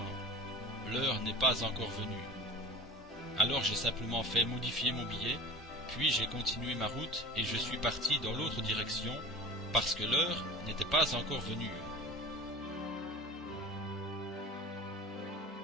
l'heure n'est pas encore venue. Alors j'ai simplement fait modifier mon billet, puis j'ai continué ma route et je suis parti dans l'autre direction parce que l'heure n'était pas encore venue.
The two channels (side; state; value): both; normal; correlation 0.38